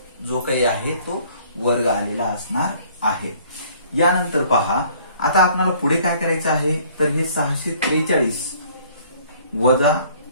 जो काही आहे तो वर्ग आलेला असणार आहे। यानंतर पहा, आता आपल्याला पुढे काय करायचं आहे, तर हे 643 वजा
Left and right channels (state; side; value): inverted; both; correlation -0.57